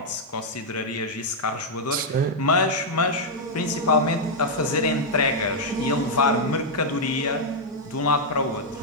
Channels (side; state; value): both; normal; correlation -0.04